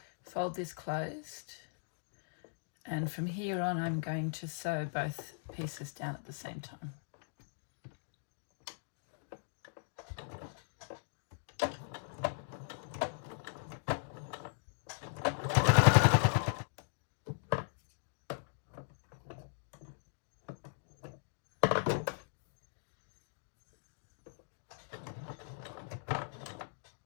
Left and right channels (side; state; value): right; silent; digital silence